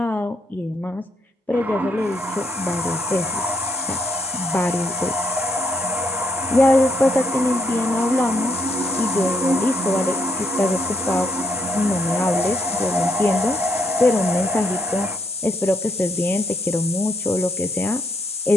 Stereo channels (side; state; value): both; normal; correlation 0.73